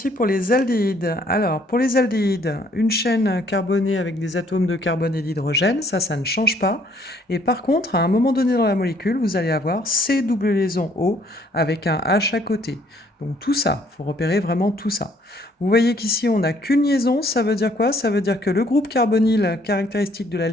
pour les aldéhydes. Alors, pour les aldéhydes, une chaîne carbonée avec des atomes de carbone et d'hydrogène, ça ne change pas. Et par contre, à un moment donné dans la molécule, vous allez avoir C double liaison O avec un H à côté. Donc tout ça, il faut repérer vraiment tout ça. Vous voyez qu'ici, on n'a qu'une liaison, ça veut dire quoi? Ça veut dire que le groupe carbonyle caractéristique de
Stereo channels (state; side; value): normal; both; correlation 0.63